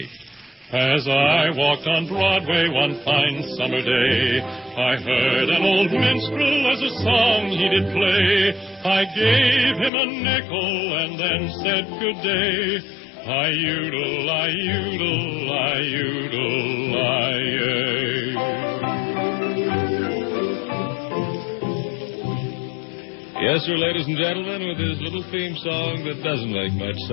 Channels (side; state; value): right; drops out; at 9.9 s